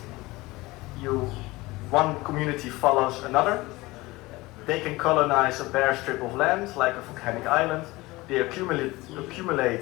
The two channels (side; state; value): right; quieter; 20.8 dB